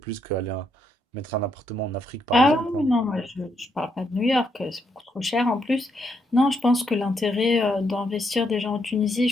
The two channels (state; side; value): normal; both; correlation 0.77